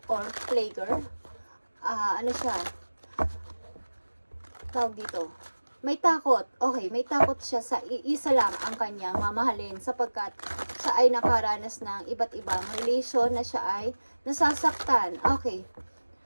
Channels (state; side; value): inverted; both; correlation -1.00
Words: or playgirl. Ano siya? Tawag dito. May takot. Okay, may takot siya sa isa lang ang kanyang mamahalin sapagkat siya ay nakaranas ng iba't ibang relation na siya ay nasasaktan. Okay.